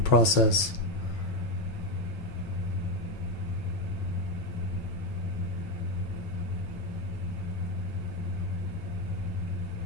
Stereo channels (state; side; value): late; right; 9.2 ms